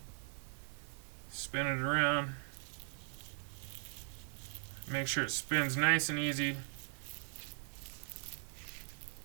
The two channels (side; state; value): left; quieter; 36.7 dB